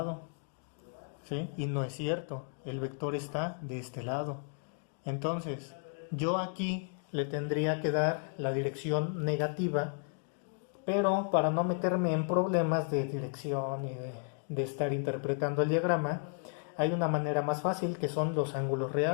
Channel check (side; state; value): right; silent; 55 dB below the other